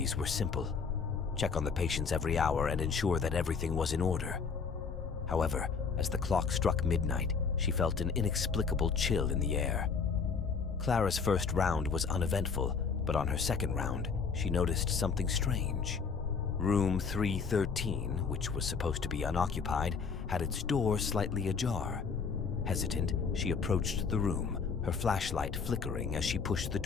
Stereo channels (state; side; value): quieter; right; 5.5 dB